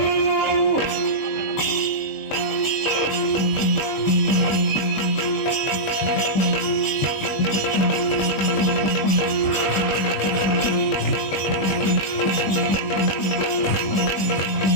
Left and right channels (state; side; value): late; right; 20 ms